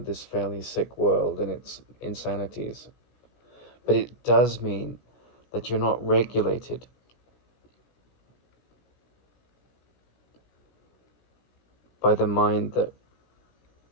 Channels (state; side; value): late; right; 16 ms